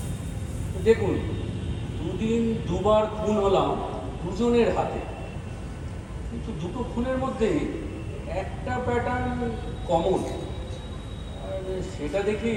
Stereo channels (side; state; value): both; identical; correlation 1.00